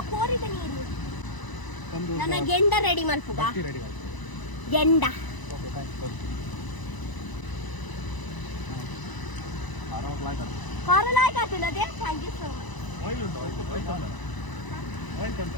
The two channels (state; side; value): late; right; 1.0 ms